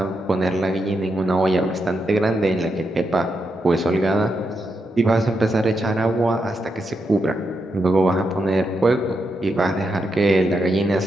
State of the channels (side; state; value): both; normal; correlation 0.83